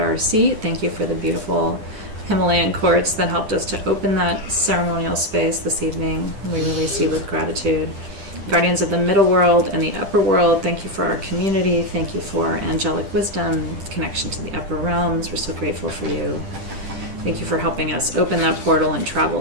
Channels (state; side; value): late; left; 10 ms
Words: seat. Thank you for the beautiful Himalayan quartz that helped us to open that ceremonial space this evening. We release you with gratitude. Guardians of the middle world and the upper world, thank you for our community. Thank you for angelic wisdom, connection to the upper realms. We're so grateful for you. Thank you for helping us open that portal and